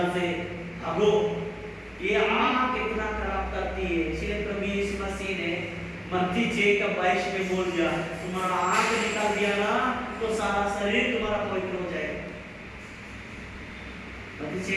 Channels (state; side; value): identical; both; correlation 1.00